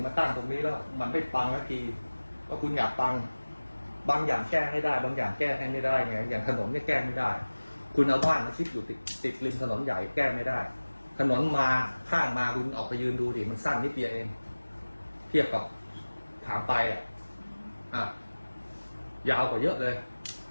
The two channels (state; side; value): inverted; both; correlation -1.00